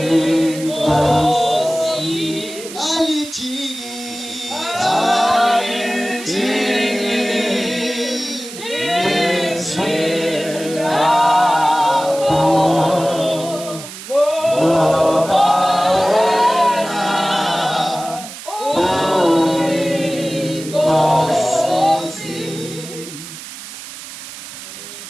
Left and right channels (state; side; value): noise; right; hiss, 13 dB below the sound